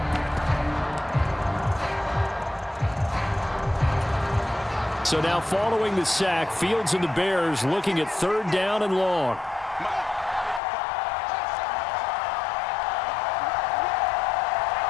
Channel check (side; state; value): right; drops out; at 10.6 s